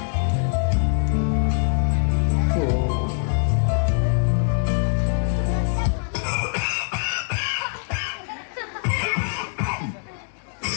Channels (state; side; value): silent; right; 61 dB below the other